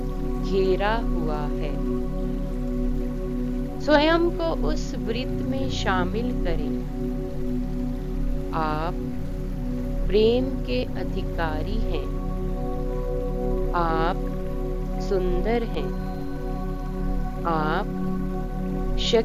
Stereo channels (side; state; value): both; identical; correlation 1.00